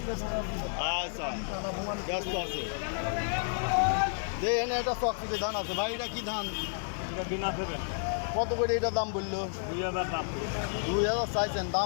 আচ্ছা, ব্যস্ত আছে। যে এনে একটা চকচিকে ধান আছে ভাই, এটা কি ধান? কত করে এটা দাম বললো? 2000 চাইছেন,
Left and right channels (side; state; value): right; silent; digital silence